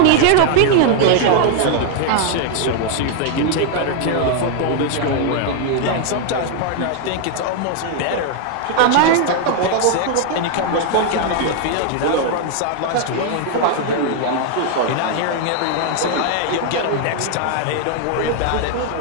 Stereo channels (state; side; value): different; both; correlation 0.00